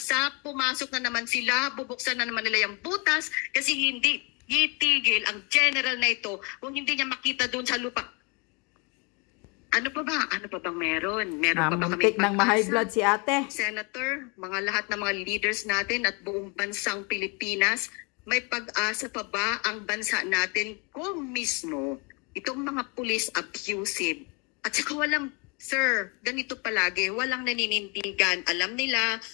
pumasok na naman sila, bubuksan na naman nila yung butas kasi hindi itigil ang general na ito kung hindi niya makita doon sa lupa. Ano pa ba? Ano pa bang meron? Meron pa ba kami ng ma-high blood si ate? Senator, mga lahat ng mga leaders natin at buong bansang Pilipinas, may pag-asa pa ba ang bansa natin kung mismo itong mga police abusive? At saka walang, sir, ganito palagi, walang naninindigan. Alam nila,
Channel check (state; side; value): quieter; right; 30.8 dB